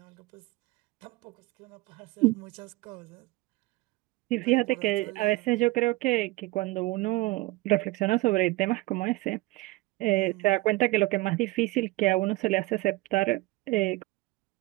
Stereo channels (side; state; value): left; quieter; 20.3 dB